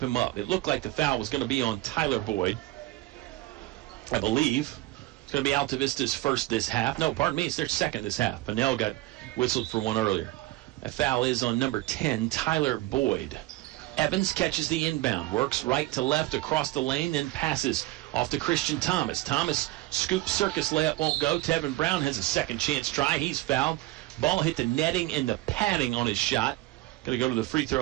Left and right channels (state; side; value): quieter; left; 17.9 dB